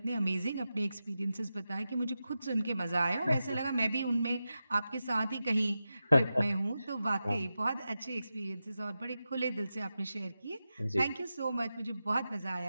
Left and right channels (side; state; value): both; inverted; correlation -0.91